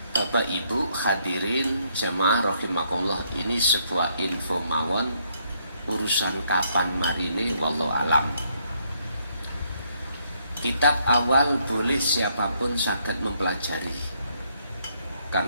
Bapak Ibu hadirin jemaah rahimakumullah, ini sebuah info mawon, urusan kapan marine wallahu alam. Kitab awal boleh siapapun saged mempelajari.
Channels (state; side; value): inverted; both; correlation -0.71